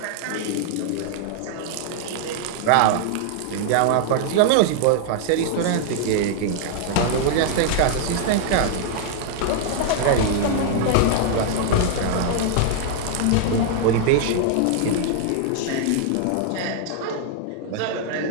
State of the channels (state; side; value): different; both; correlation -0.01